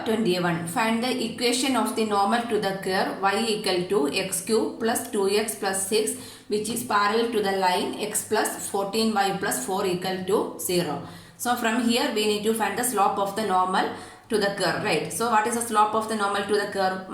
21. Find the equation of the normal to the curve y equal to x cube plus 2x plus 6 which is parallel to the line x plus 14y plus 4 equal to 0. So from here we need to find the slope of the normal to the curve, right? So what is the slope of the normal to the curve?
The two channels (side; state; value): both; identical; correlation 1.00